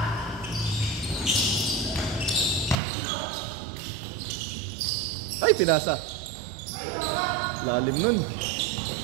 Ay, pinasa. Lalim nun.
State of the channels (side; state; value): left; drops out; at 2.8 s